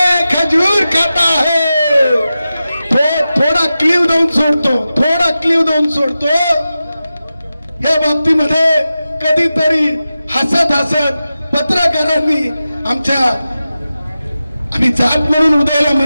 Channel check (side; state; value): both; inverted; correlation -0.93